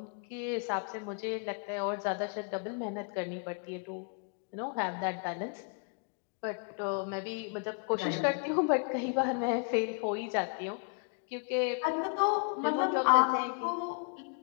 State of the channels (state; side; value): quieter; right; 40.0 dB